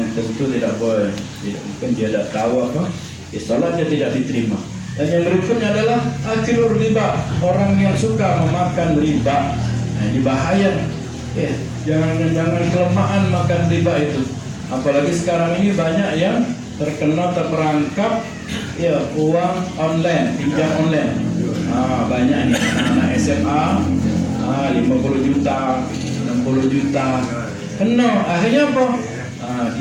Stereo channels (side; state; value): both; identical; correlation 1.00